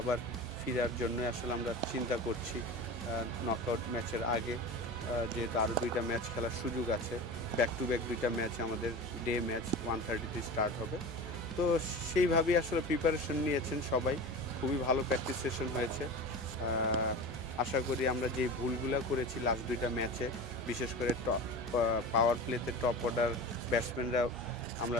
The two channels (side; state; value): both; normal; correlation 0.31